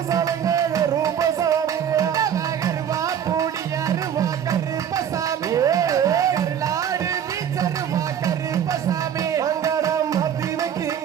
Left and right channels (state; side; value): quieter; left; 9.0 dB